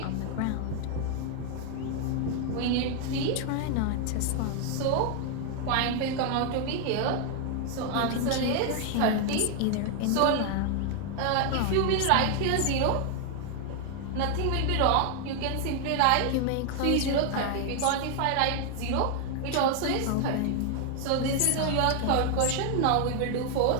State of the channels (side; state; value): both; different; correlation 0.00